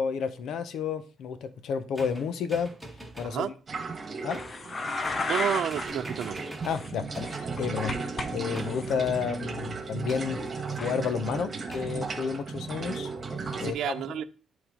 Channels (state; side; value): normal; both; correlation 0.67